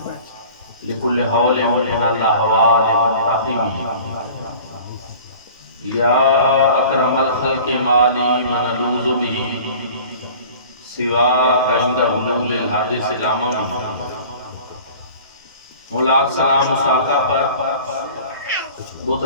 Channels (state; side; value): inverted; both; correlation -0.45